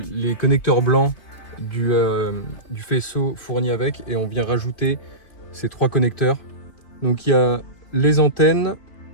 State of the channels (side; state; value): right; late; 3.0 ms